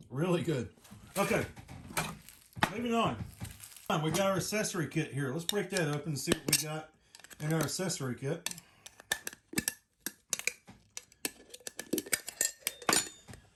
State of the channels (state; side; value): identical; both; correlation 1.00